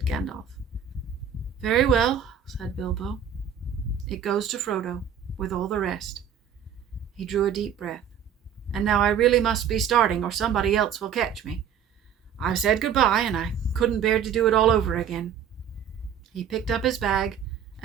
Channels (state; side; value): quieter; left; 8.1 dB